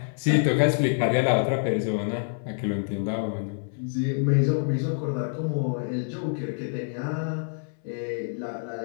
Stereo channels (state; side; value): silent; right; 60 dB below the other